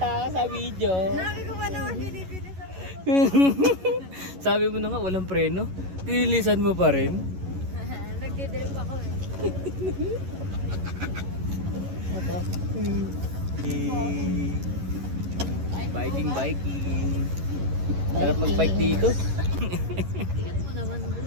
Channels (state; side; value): late; left; 11 ms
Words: ka sa video. Sabi ko pa naman binibili sa Sabi mo na nga, walang preno. Tinilisan mo pa rin. Nagdidrip ako eh. Ito. Biking. Sarap mag-bike dito. Ingat mo naman,